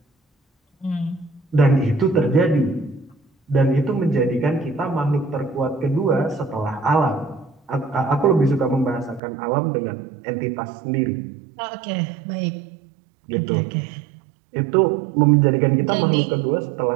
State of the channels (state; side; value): drops out; left; at 9.2 s